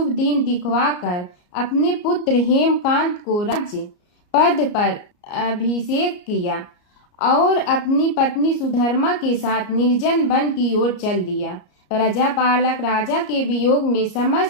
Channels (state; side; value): late; right; 33 ms